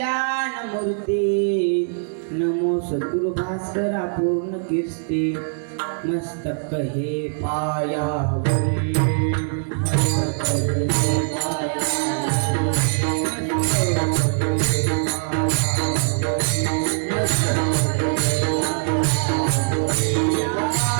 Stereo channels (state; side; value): silent; left; digital silence